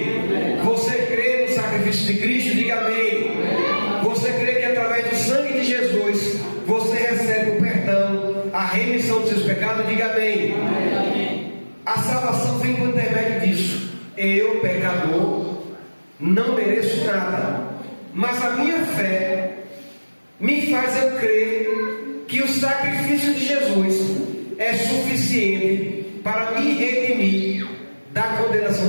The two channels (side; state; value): both; inverted; correlation -1.00